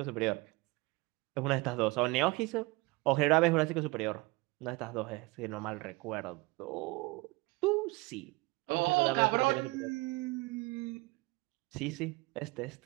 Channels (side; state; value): left; quieter; 23.7 dB